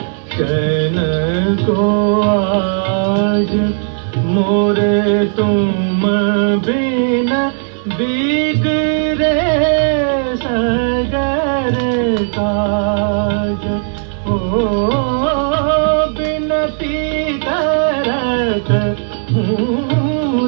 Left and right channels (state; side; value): silent; left; 62 dB below the other